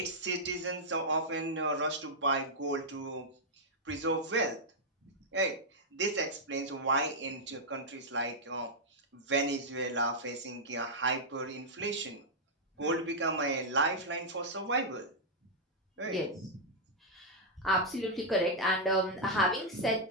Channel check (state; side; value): normal; both; correlation -0.06